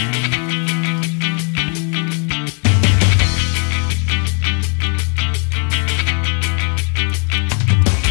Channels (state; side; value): quieter; right; 36.2 dB